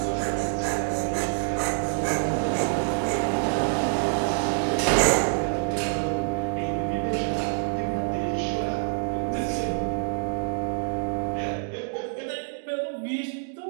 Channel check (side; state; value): left; silent; digital silence